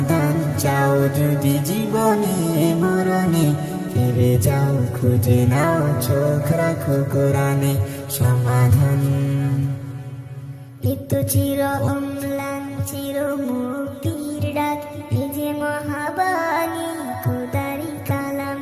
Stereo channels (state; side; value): identical; both; correlation 1.00